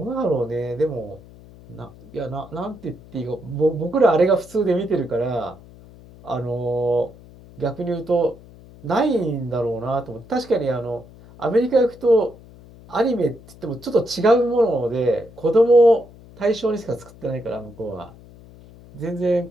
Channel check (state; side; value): noise; left; hum, 21 dB below the sound